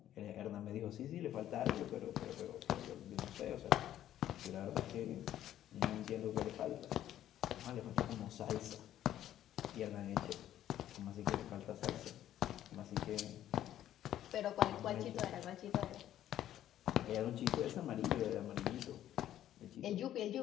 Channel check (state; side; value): quieter; right; 12.0 dB